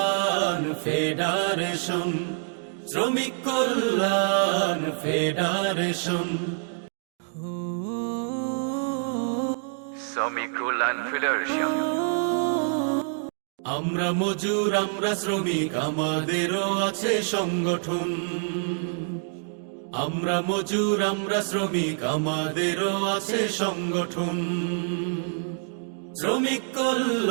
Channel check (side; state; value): left; silent; 61 dB below the other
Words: ফেডারেশন, শ্রমিক কল্যাণ ফেডারেশন। শ্রমিক কল্যাণ ফেডারেশন। আমরা মজুর, আমরা শ্রমিক, আমাদেরও আছে সংগঠন। আমরা মজুর, আমরা শ্রমিক, আমাদেরও আছে সংগঠন। শ্রমিক